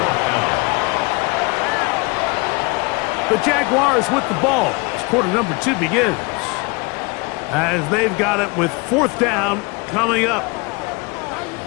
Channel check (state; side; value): quieter; right; 28.3 dB